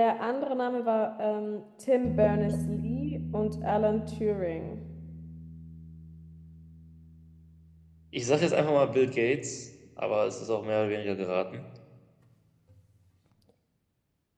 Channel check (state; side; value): identical; both; correlation 1.00